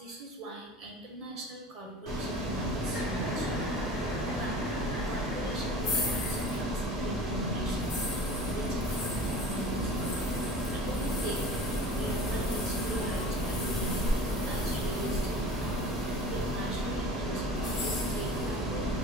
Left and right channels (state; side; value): normal; both; correlation 0.40